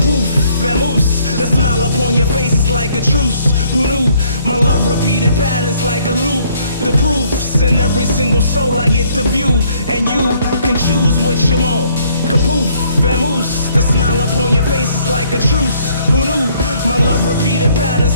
vamoose, the smile upon your face is like a truce. Who knew? My love repeated patterns like a loop. The proofs in every single soul I get to view, and you can choose what you want. Kapoof, vamoose, the smile upon your face is like a truce. Who knew? My love repeated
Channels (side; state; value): both; inverted; correlation -0.64